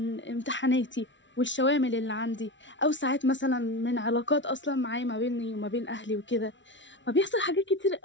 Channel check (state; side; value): late; right; 0.55 ms